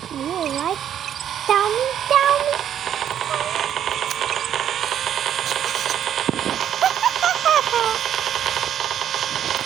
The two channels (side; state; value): left; quieter; 9.8 dB